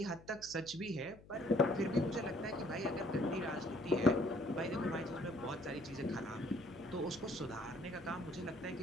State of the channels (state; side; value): noise; left; hum, 21 dB below the sound